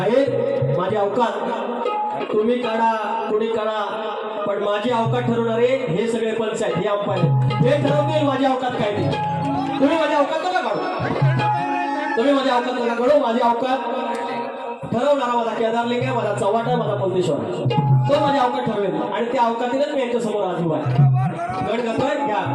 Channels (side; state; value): both; identical; correlation 1.00